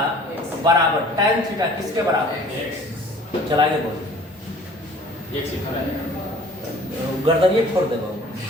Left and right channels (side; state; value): both; normal; correlation 0.50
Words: बराबर tan थीटा किसके बराबर? चलाइए बोलो, गर्दन ये छोड़ देगा,